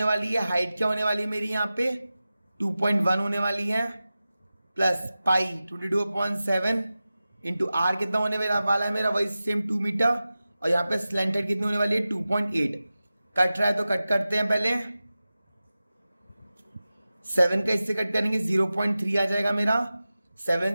वाली है, हाइट क्या होने वाली है मेरी यहाँ पे 2.1 होने वाली है, प्लस पाई 22/7 इंटू आर कितना होने वाला है मेरा वही सेम 2 मीटर, और यहाँ पे स्लैंट हेड कितनी होने वाली है 2.8। कट रहा है तो कट करते हैं, पहले 7 का इससे कट करेंगे 0.3 आ जाएगा मेरा,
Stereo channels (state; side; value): inverted; both; correlation -0.95